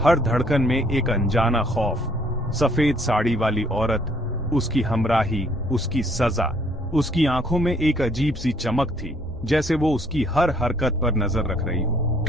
धड़कन में एक अनजाना खौफ। सफेद साड़ी वाली औरत, उसकी हमराही, उसकी सजा। उसकी आंखों में एक अजीब सी चमक थी, जैसे वो उसकी हर हरकत पर नजर रख रही हो।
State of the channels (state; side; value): normal; both; correlation 0.63